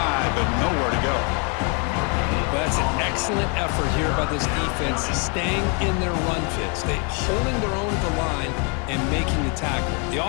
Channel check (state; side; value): quieter; right; 34.0 dB